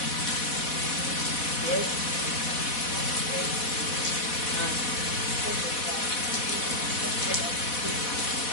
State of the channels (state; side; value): late; right; 4.1 ms